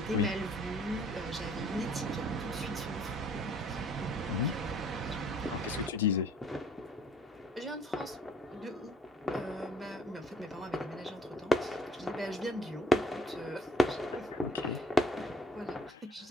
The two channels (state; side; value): normal; both; correlation 0.59